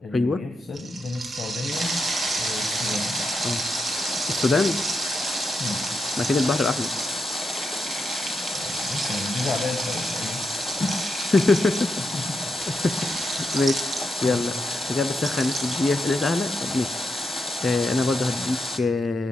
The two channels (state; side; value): normal; both; correlation 0.84